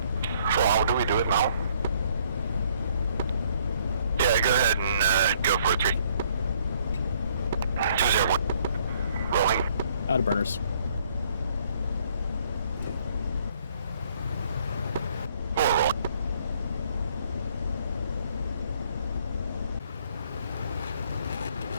So how do we do it now? Yeah, go ahead and go for a 3. 201. Rolling. Out of burners.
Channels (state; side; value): inverted; both; correlation -0.65